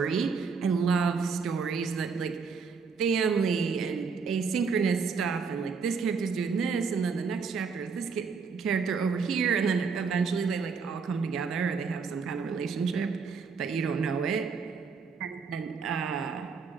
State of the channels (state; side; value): quieter; left; 5.4 dB